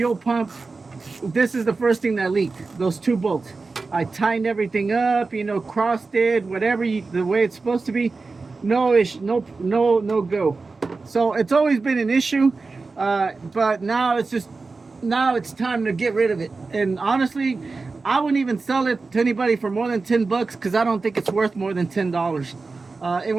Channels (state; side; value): quieter; left; 4.0 dB